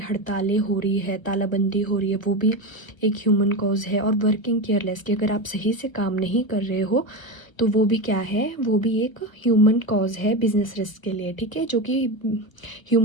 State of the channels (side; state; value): right; late; 1.0 ms